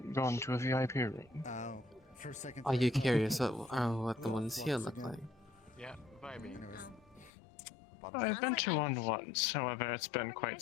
gone to a VIP room. Oh, for a second. Are you curious what the ones here look like? Yeah, vibing. Anyways. I've been to one once, however, it's been quite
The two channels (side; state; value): right; drops out; at 7.3 s